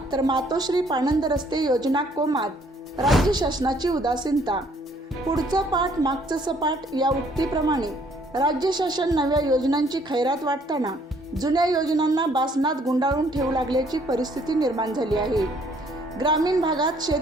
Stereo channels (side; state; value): both; normal; correlation 0.63